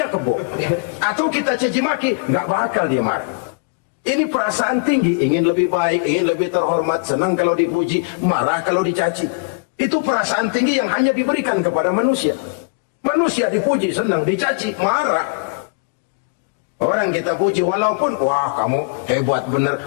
kebo. Atau kita caci maki, nggak bakal dia marah. Ini perasaan tinggi, ingin lebih baik, ingin lebih terhormat, senang kalau dipuji, marah kalau dicaci. Itu perasaan tinggi yang hanya diberikan kepada manusia. Manusia dipuji, senang, dicaci, marah. Orang kita puji walaupun, wah kamu hebat bener.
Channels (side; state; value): right; quieter; 34.0 dB